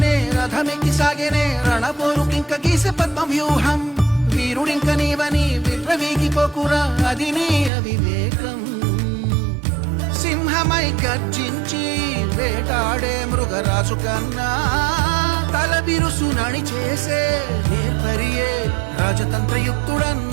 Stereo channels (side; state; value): left; drops out; at 7.7 s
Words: రథమెక్కి సాగేనే రణపోరుకింక గీసే పద్మం వ్యూహం. వీరుడింక నీవని విప్రవీగిపోకురా అది నీ అవివేకం. సింహమై గర్జించి వేటాడే మృగరాజు కన్నా తల బిరుసు నడి చేసే నేర్పరియే